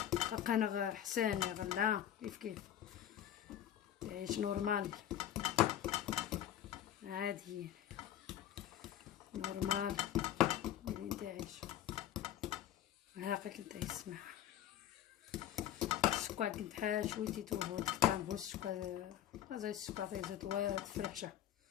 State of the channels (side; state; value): right; quieter; 11.3 dB